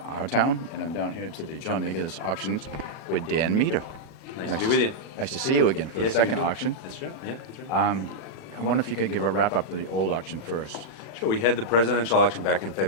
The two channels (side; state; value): right; late; 40 ms